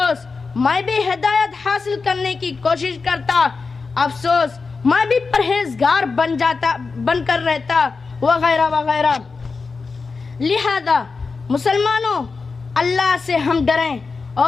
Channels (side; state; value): right; quieter; 4.5 dB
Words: میں بھی ہدایت حاصل کرنے کی کوشش کرتا، افسوس میں بھی پرہیزگار بن کر رہتا، وغیرہ وغیرہ۔ لہذا مسلمانوں، اللہ سے ہم ڈریں